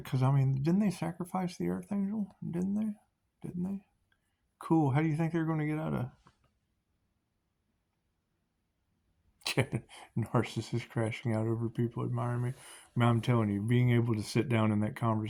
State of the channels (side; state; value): both; identical; correlation 1.00